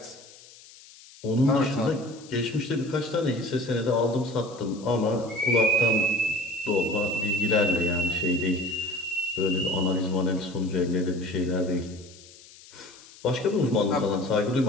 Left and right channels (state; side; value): noise; left; hiss, 22 dB below the sound